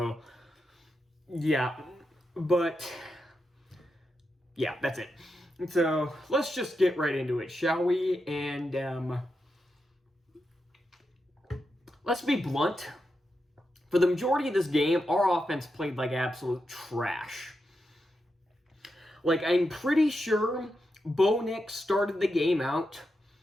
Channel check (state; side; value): normal; both; correlation 0.87